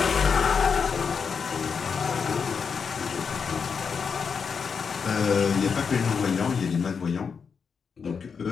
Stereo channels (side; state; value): right; quieter; 6.0 dB